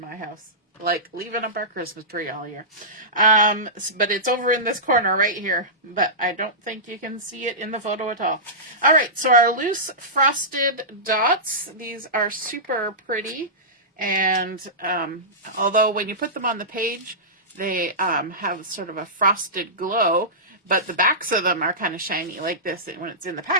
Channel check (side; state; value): both; normal; correlation -0.17